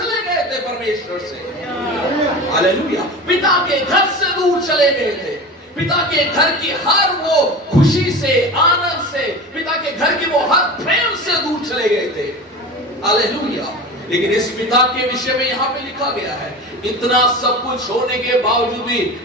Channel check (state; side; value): normal; both; correlation 0.31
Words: गए थे परमेश्वर से। हालेलुया। पिता के घर से दूर चले गए थे, पिता के घर की हर वो खुशी से, आनंद से, पिता के घर की वो हर प्रेम से दूर चले गए थे। हालेलुया। लेकिन इस पिता के विषय में यहाँ पे लिखा गया है, इतना सब कुछ होने के बावजूद भी